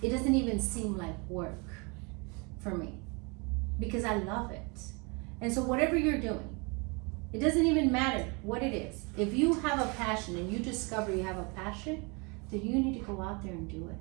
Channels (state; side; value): quieter; left; 30.4 dB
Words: It doesn't even seem like work for me because I love it. And so whatever you're doing, it doesn't even matter what it is. If you have a passion and you discover you have a passion, then you need to go out there and do it.